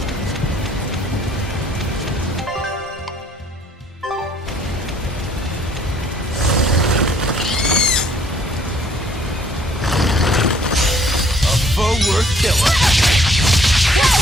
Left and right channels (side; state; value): both; normal; correlation 0.61